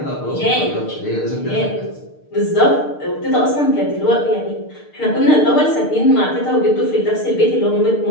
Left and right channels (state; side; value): late; right; 6.6 ms